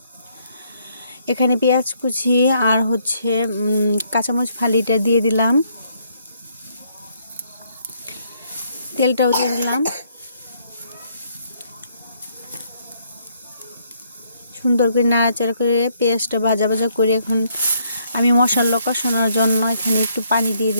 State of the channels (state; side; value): inverted; both; correlation -0.70